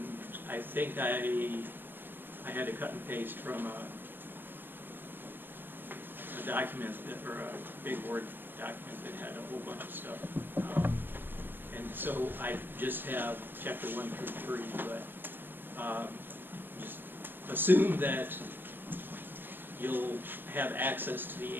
I think I had to cut and paste from a document or a big Word document that had a whole bunch of stuff. And so I just have chapter 1 through 3, but just assume that you'll have access to the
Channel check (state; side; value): late; left; 0.097 ms